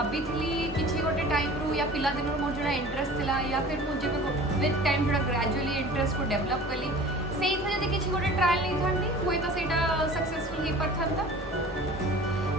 किसी गोटे टाइम रू या पिला दिन मोर जोड़ा इंटरेस्ट थिला या फिर मुझे विथ टाइम जोड़ा ग्रेजुअली इंटरेस्ट को डेवलप कली से जब किसी गोटे ट्रायल नहीं था हुए तो सेटा सक्सेसफुल हो पाता.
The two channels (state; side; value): normal; both; correlation 0.43